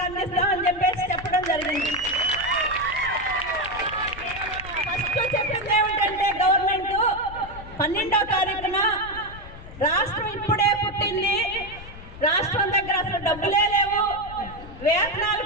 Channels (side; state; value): left; noise; rumble, 15 dB below the sound